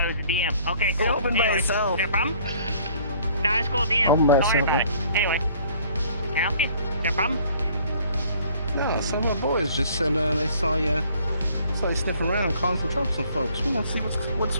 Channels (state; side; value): inverted; both; correlation -0.58